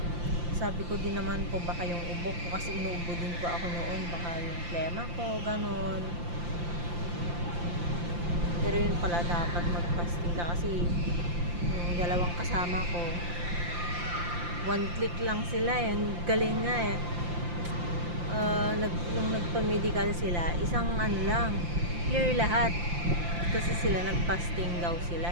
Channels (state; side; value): late; left; 5.8 ms